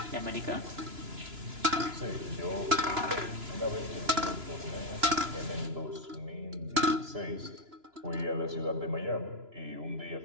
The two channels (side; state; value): left; late; 2.9 ms